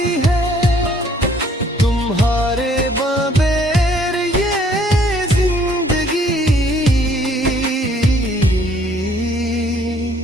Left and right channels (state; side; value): normal; both; correlation 0.61